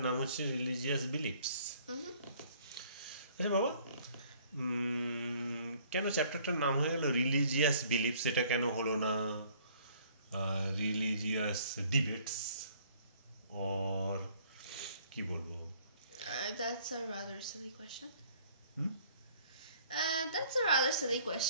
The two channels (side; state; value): both; inverted; correlation -0.58